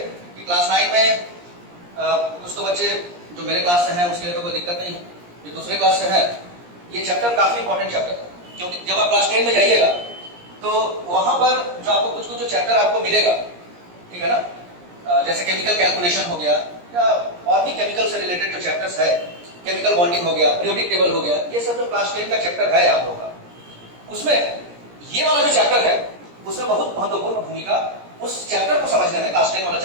कि क्लास 9 में कुछ तो बच्चे जो मेरे क्लास से हैं उसके लिए तो कोई दिक्कत नहीं है, जो दूसरे क्लास से है ये चैप्टर काफी इंपॉर्टेंट चैप्टर है, क्योंकि जब आप क्लास 10 में जाइएगा तो वहां पर जो आपको कुछ कुछ जो चैप्टर आपको मिलेगा, ठीक है ना, जैसे केमिकल कैलकुलेशन हो गया या और भी केमिकल से रिलेटेड जो चैप्टर्स है, केमिकल बॉन्डिंग हो गया, पीरियोडिक टेबल हो गया, ये सब जो क्लास 10 का चैप्टर है आप लोगों का, उसमें ये वाला जो चैप्टर है उसमें बहुत महत्वपूर्ण भूमिका उस चैप्टर को समझने में, क्लास 10 वाला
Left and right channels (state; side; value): late; left; 17 ms